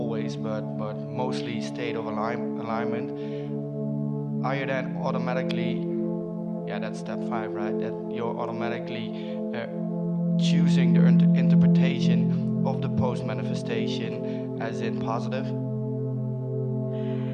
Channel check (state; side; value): identical; both; correlation 1.00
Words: but mostly state of alignment, are you then automatically, that's step 5, right, that you're automatically choosing the interpretation of the post-manifestation as in positive?